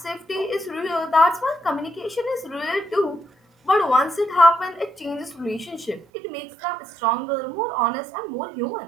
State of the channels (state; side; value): drops out; left; at 6.1 s